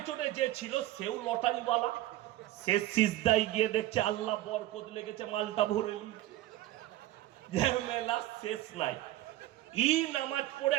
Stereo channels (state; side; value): quieter; left; 15.4 dB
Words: যে ছিল সেও লটারিওয়ালা, সে সিজদায় গিয়ে দেখছে আল্লাহ বরকত লেগেছে, মালটা ভরে নিয়েছে। মেলা শেষ নাই। ই নামাজ পড়ে